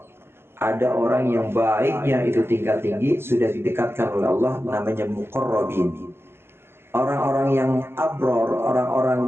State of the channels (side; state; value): left; late; 0.11 ms